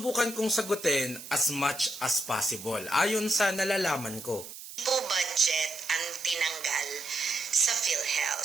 kong sagutin as much as possible ayon sa nalalaman ko. Po budget ang tinanggal sa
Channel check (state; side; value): noise; right; hiss, 13 dB below the sound